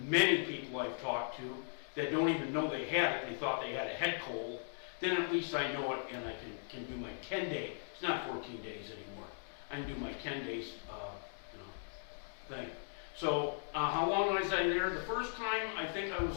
people I've talked to that don't even know they had it, they thought they had a head cold, then at least I know it and I can do my 10-day, it's not 14 days anymore, I can do my 10 days thing. So how long was I there? The first time I think I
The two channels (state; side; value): silent; right; digital silence